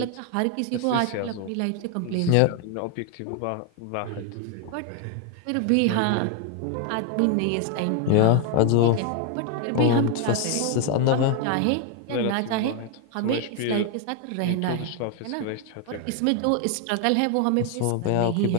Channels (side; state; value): both; different; correlation 0.01